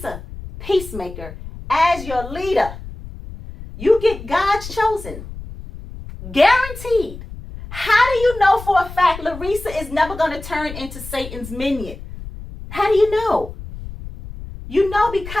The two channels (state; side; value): noise; left; rumble, 12 dB below the sound